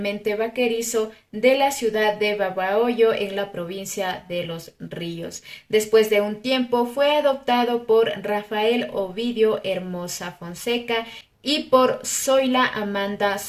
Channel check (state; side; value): identical; both; correlation 1.00